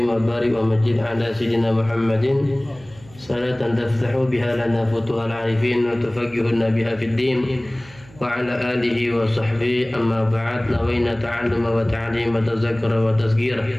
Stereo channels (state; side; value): noise; right; hum, 23 dB below the sound